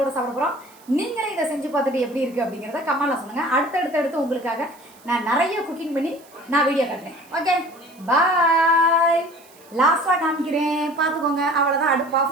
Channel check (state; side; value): noise; right; hiss, 26 dB below the sound